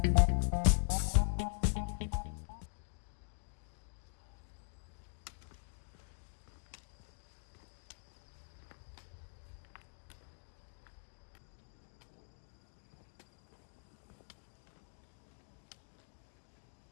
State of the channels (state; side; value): silent; right; digital silence